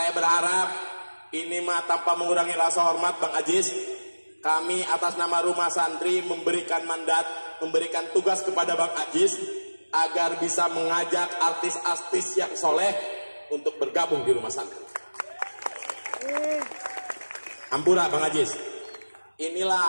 berharap ini mah tanpa mengurangi rasa hormat Bang Ajis, kami atas nama rumah santri memberikan mandat, memberikan tugas kepada Bang Ajis agar bisa mengajak artis-artis yang soleh untuk bergabung di rumah santri. Ampura Bang Ajis.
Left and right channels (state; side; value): inverted; both; correlation -1.00